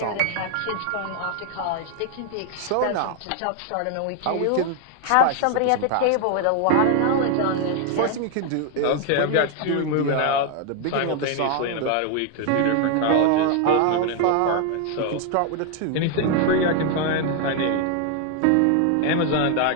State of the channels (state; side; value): different; both; correlation 0.00